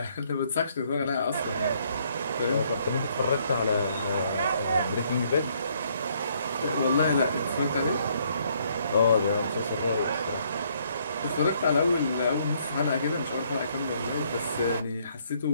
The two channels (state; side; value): inverted; both; correlation -0.68